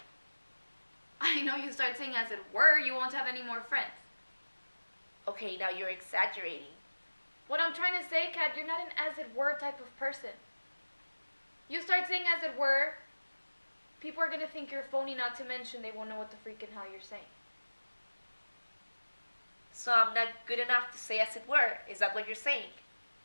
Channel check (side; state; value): both; inverted; correlation -1.00